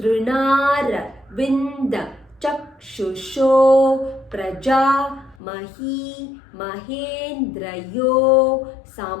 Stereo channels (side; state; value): right; drops out; at 5.4 s